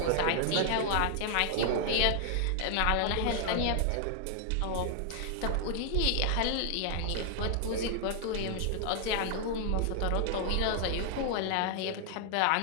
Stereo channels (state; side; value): different; both; correlation 0.00